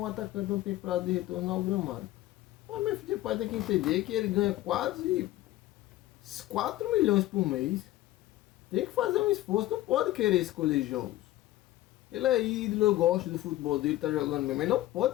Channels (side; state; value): right; quieter; 15.6 dB